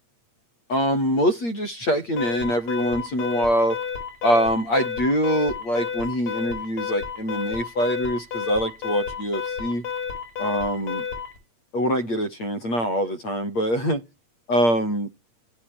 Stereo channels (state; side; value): late; right; 8.6 ms